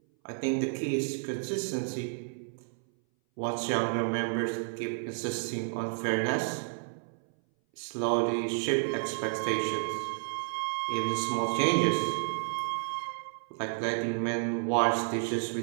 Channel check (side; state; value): left; silent; 57 dB below the other